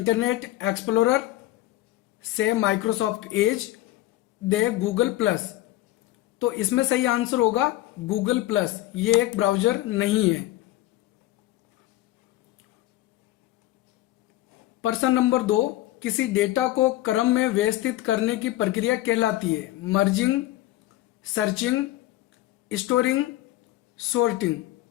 Explorer, C Microsoft Edge, D Google Plus. तो इसमें सही आंसर होगा गूगल प्लस। ये एक ब्राउज़र नहीं है। प्रश्न नंबर 2, किसी डेटा को क्रम में व्यवस्थित करने की प्रक्रिया कहलाती है? Merging, searching, storing, sorting.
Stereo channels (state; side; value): quieter; right; 15.8 dB